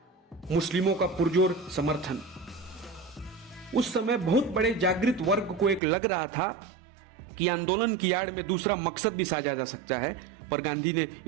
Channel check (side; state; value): left; drops out; at 5.8 s